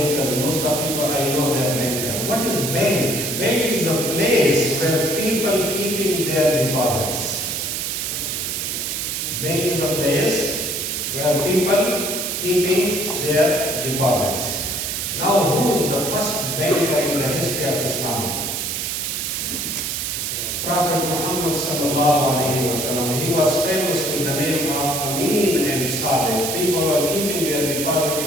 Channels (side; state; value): right; noise; hiss, 2 dB below the sound